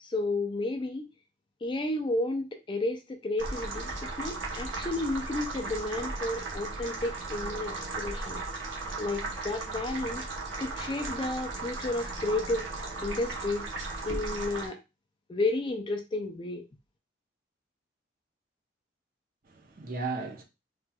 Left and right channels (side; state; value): both; normal; correlation 0.49